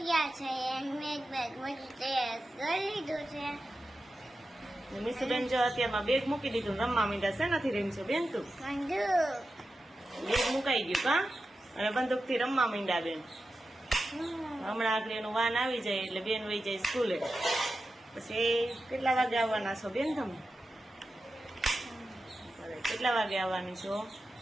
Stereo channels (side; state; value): both; normal; correlation 0.92